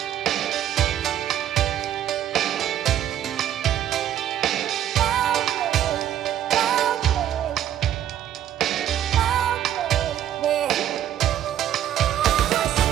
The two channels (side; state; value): left; quieter; 11.1 dB